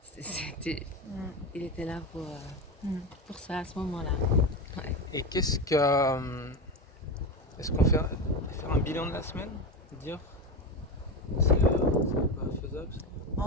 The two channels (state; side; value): normal; both; correlation 0.19